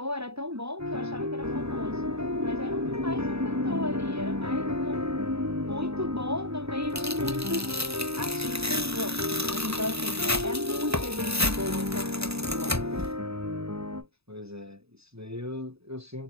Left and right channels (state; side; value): late; left; 0.78 ms